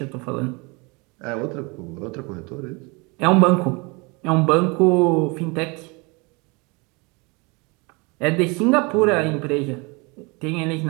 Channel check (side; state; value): left; quieter; 28.3 dB